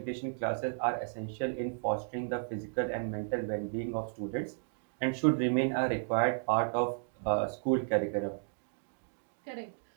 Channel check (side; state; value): left; silent; digital silence